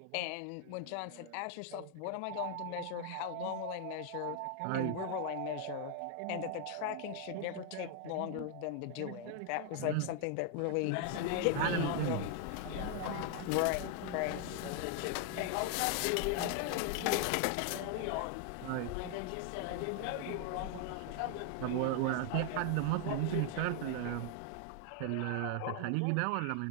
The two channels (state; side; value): different; both; correlation 0.00